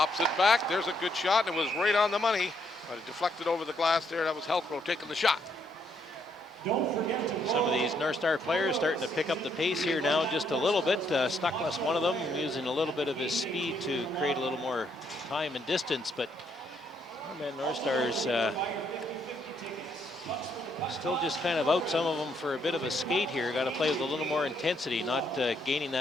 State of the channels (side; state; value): both; normal; correlation 0.73